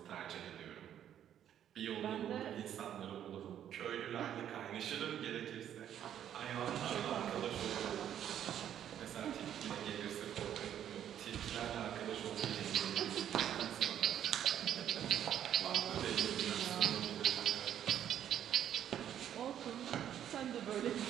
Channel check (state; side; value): quieter; left; 10.2 dB